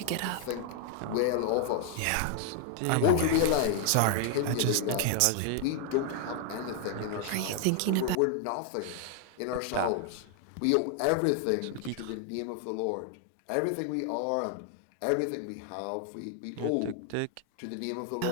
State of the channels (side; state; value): both; different; correlation 0.00